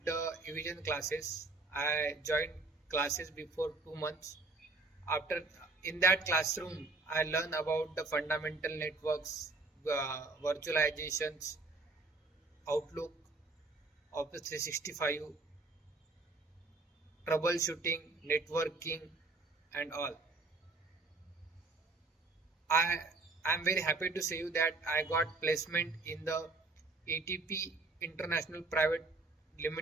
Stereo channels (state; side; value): quieter; left; 3.5 dB